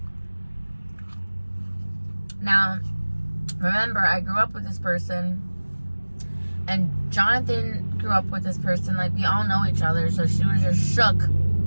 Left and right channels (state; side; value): inverted; both; correlation -1.00